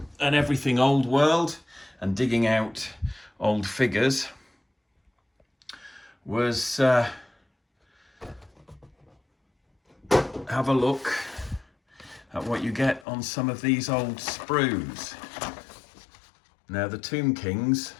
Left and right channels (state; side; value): drops out; right; at 13.1 s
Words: and everything Old World and digging out old figures was have a look at what you get on some of these old sprues. Now the Tomb Kings,